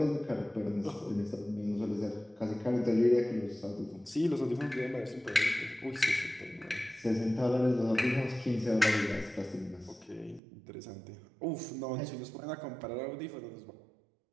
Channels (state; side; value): drops out; left; at 10.4 s